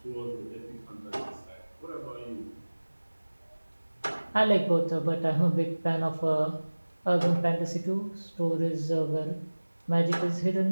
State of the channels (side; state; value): both; inverted; correlation -1.00